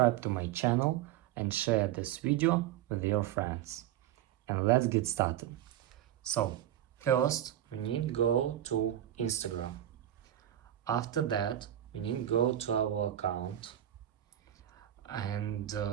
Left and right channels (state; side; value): quieter; left; 12.0 dB